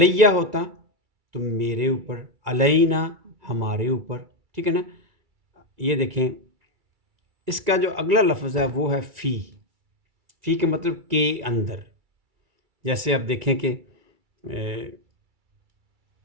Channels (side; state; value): left; late; 2.3 ms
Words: ہوتا تو میرے اوپر، علینا ہمارے اوپر، ٹھیک ہے نا۔ یہ دیکھیں اس کا جو اگلا لفظ ہے وہ ہے فی کا مطلب کے اندر، جیسے آپ دیکھیں کہ